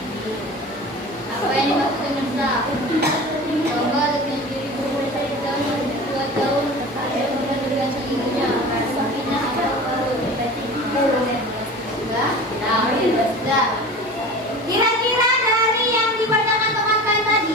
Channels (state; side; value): normal; both; correlation 0.36